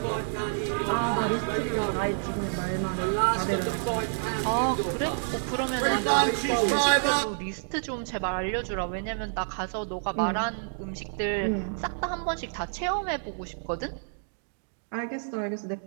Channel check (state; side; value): silent; left; digital silence